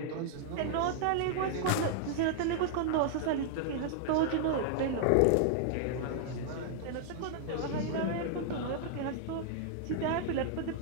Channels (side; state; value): both; different; correlation -0.01